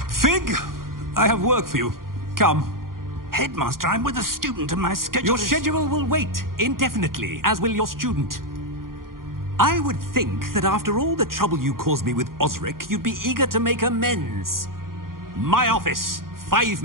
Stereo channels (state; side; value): late; left; 0.91 ms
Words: Fig! I have work for you. Come. Headmaster, I'm with a student and my schedule Your is... schedule will wait indefinitely, as will your student. I would think that after all the trouble you caused me with Osric, you'd be eager to make amends. My office, 5